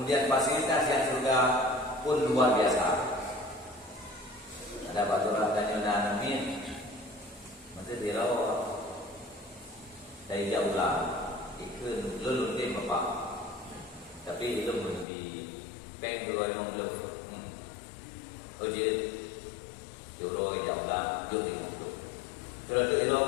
fasilitas yang surga pun luar biasa. Ada baturan tanya amin, mesti dirawat dari jauh lah, ikut lulun deh bapak. Tapi itu belum di bank dulu emang belum. Oh jadi euro jauh lah, belum belum. Terus euro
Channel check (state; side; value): drops out; right; at 15.1 s